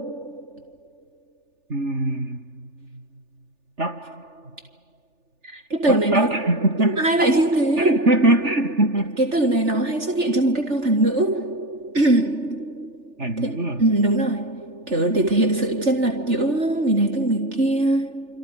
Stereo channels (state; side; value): late; left; 3.4 ms